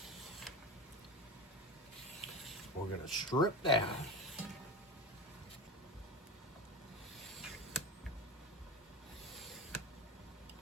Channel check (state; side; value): normal; both; correlation 0.25